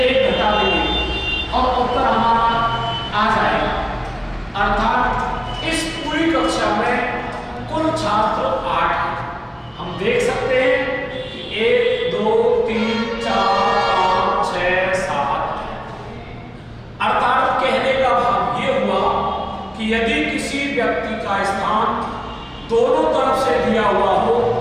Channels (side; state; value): both; identical; correlation 1.00